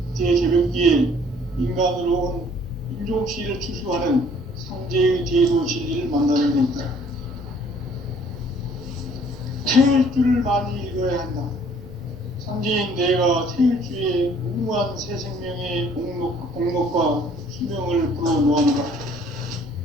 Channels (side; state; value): right; noise; rumble, 22 dB below the sound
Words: 대개벽기에 인간으로 온 인종시를 추수하는 상제의 대도 진리를 만나는 데 있다. 태일주를 많이 읽어야 한다. 상제인 내가 태일주의 무궁한 새 생명의 공목과 수명을 불어놓았노라.